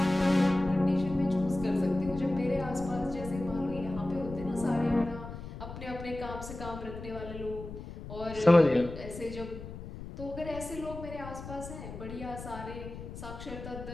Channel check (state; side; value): noise; left; rumble, 11 dB below the sound